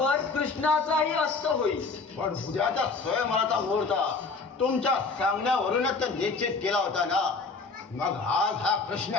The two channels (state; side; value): quieter; right; 4.2 dB